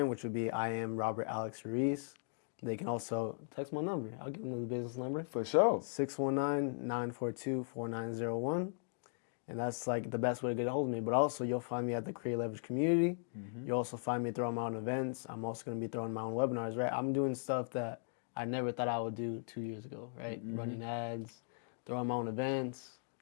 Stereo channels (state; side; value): silent; right; digital silence